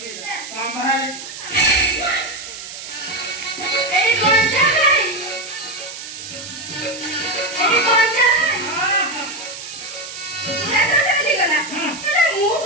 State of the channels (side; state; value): right; noise; hiss, 11 dB below the sound